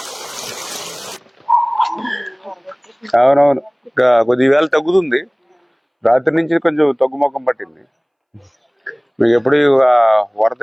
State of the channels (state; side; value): identical; both; correlation 1.00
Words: అవునవును, కొద్ది వేళ తగ్గుతుంది. రాత్రి నుంచి కొంచెం తగ్గుముఖం పట్టింది. మీకు ఎప్పుడు వరద